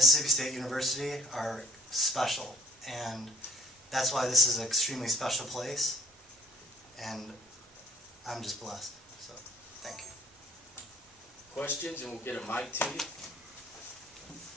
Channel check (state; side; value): normal; both; correlation 0.57